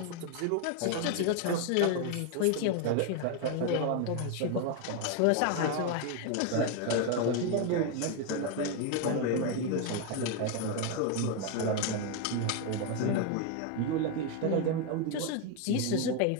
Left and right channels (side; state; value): both; different; correlation 0.01